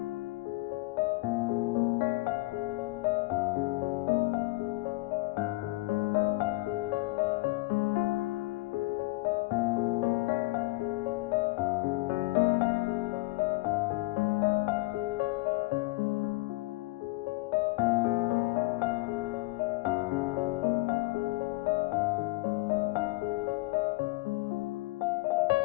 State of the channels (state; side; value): quieter; right; 22.0 dB